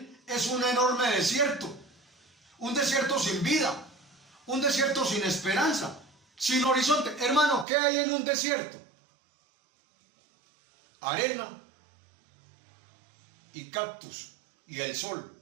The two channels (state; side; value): drops out; left; at 7.7 s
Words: es un enorme desierto. Un desierto sin vida, un desierto sin esperanza, sin horizonte. Hermano, ¿qué hay en un desierto? Arena y cactus y el sol